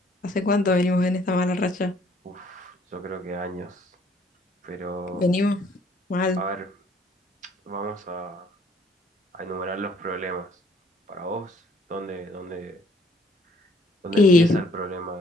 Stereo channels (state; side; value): normal; both; correlation 0.61